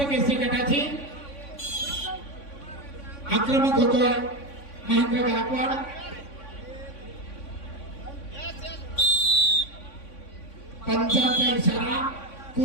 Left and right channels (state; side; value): late; right; 3.5 ms